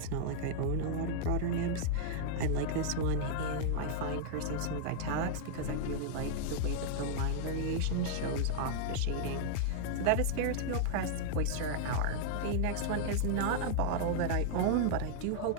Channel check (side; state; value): both; different; correlation -0.01